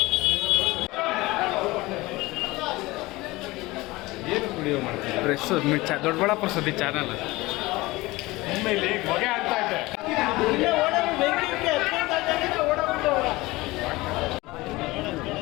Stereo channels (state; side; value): quieter; right; 20.6 dB